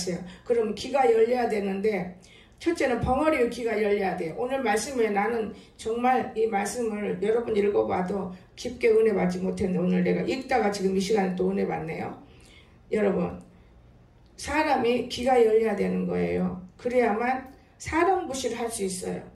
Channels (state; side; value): identical; both; correlation 1.00